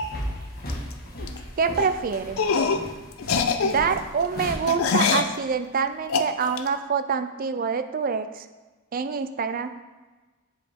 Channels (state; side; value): normal; both; correlation -0.20